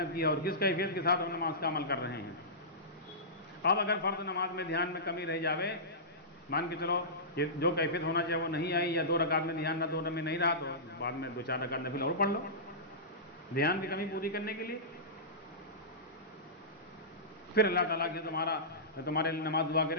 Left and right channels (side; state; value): both; normal; correlation -0.18